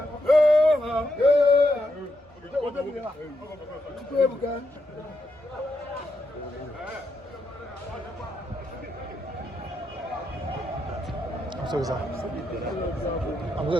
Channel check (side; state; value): both; normal; correlation 0.81